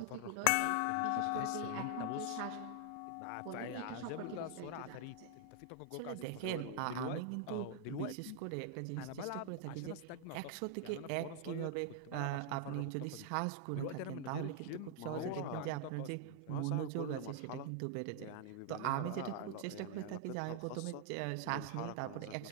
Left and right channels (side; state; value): both; different; correlation 0.00